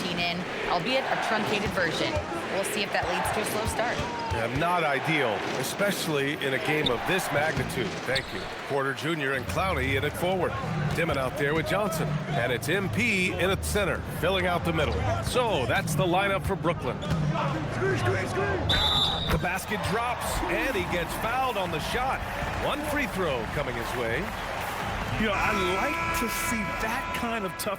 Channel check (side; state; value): both; identical; correlation 1.00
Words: in, albeit a truncated version. We'll see if that leads to a slow start. Yeah, not ideal, especially in a game of this magnitude. Thank you. Porter Jr. and Clowney in it forward. Dimon out there with Johnson. And it's MP in at center, filling out the middle. So that's the lineup for Brooklyn. The basket drops, and he gets fouled on the shot. One free throw coming his way. You know, I like to see that kind of